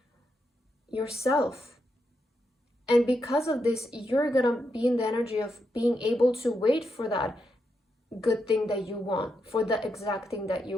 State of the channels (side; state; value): both; normal; correlation 0.83